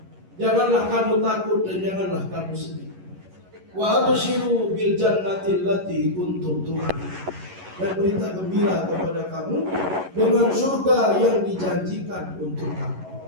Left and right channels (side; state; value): left; late; 11 ms